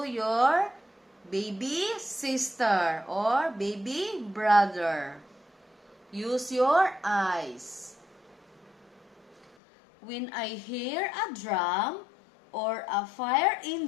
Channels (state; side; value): drops out; right; at 9.6 s